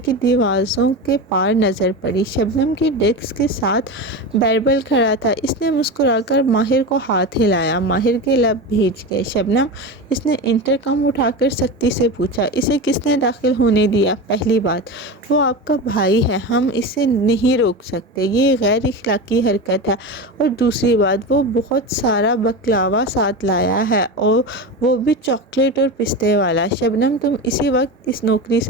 کی دیواروں کے پار نظر پڑی۔ شبنم کی ڈیسک کے ساتھ بیربل کھڑا تھا۔ اس نے مسکرا کر ماہر کو ہاتھ ہلایا۔ ماہر کے لب بھیج گئے۔ شبنم، اس نے انٹرکام اٹھا کر سختی سے پوچھا، اسے کس نے داخل ہونے دیا؟ پہلی بات، وہ آپ کا بھائی ہے، ہم اسے نہیں روک سکتے، یہ غیر اخلاقی حرکت ہے۔ اور دوسری بات، وہ بہت سارا بکلاوا ساتھ لایا ہے، اور وہ بھی چاکلیٹ اور پستے والا۔ شبنم، تم اسی وقت اس نوکری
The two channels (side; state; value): both; normal; correlation 0.23